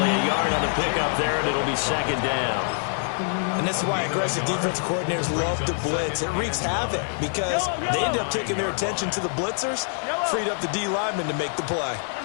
a yard on the pickup there, and it'll be 2nd down. And this is why aggressive defense coordinators love to blitz. It wreaks havoc because they end up taking their attention to the blitzers, freed up the D lineman to make the play.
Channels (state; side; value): silent; right; 62 dB below the other